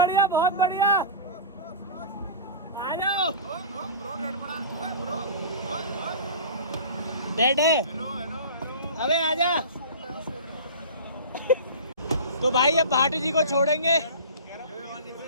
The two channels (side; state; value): both; inverted; correlation -0.35